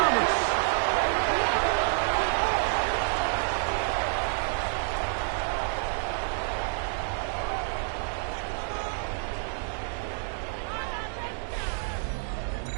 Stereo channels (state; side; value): silent; left; digital silence